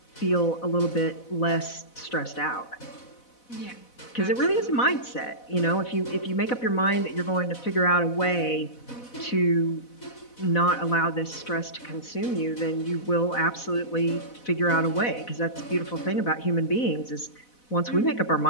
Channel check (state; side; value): late; right; 4.0 ms